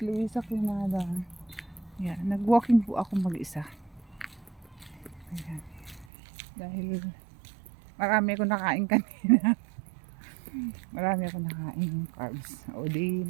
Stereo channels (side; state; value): left; drops out; at 6.1 s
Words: Luisa Quinada. Yan, nag-walking po ako mag-isa. Ayan. Dahil marami ako nakain kanina. Marami ako nakain carbs. O di,